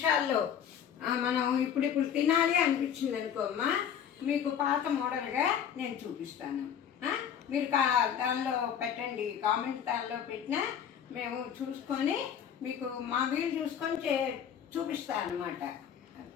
మనం ఇప్పుడు తినాలి అనిపించింది అనుకోమ్మా, మీకు పాత మోడల్గా నేను చూపిస్తాను. మీరు దానిలో పెట్టండి, కామెంట్ దానిలో పెట్టినా మేము చూసుకొని మీకు మా వీలు చూసుకొని చూపిస్తాను అనమాట.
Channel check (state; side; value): quieter; right; 8.6 dB